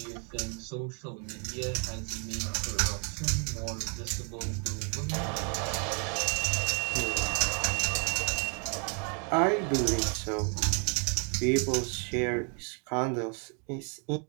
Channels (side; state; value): left; quieter; 39.3 dB